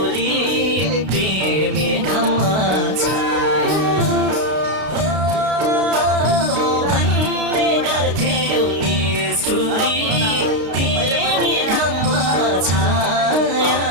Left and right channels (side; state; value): left; late; 32 ms